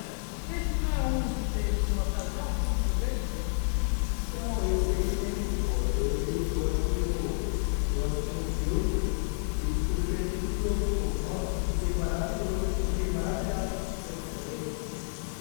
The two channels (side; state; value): right; silent; 58 dB below the other